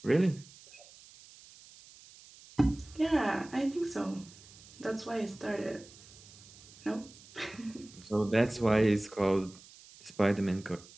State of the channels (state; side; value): noise; right; hiss, 21 dB below the sound